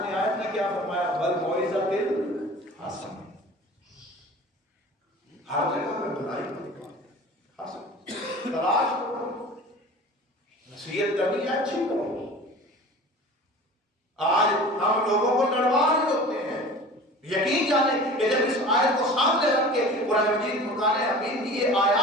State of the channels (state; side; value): normal; both; correlation 0.40